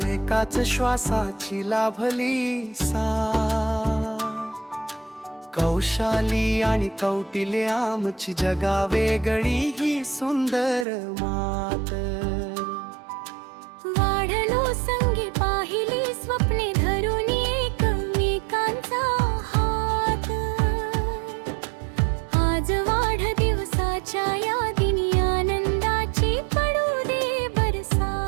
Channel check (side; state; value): left; drops out; at 10.9 s